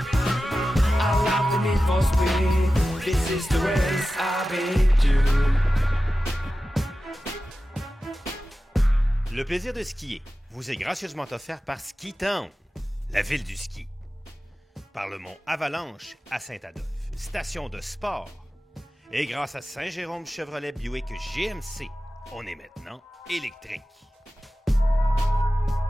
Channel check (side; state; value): both; normal; correlation 0.94